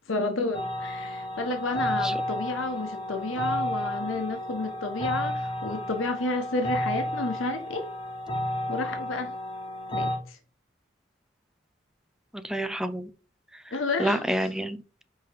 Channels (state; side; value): normal; both; correlation 0.55